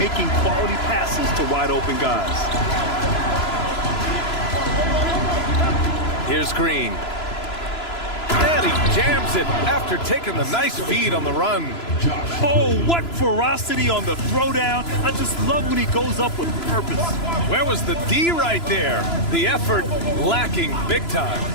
quality passes to wide open guys. Here's Green. And he jams it after taking the nice feed on the run. Oh, what ferocity on the throwdown. I just love when he goes up with purpose. Where was the D right there? The effort lacking big time.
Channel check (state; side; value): late; right; 3.0 ms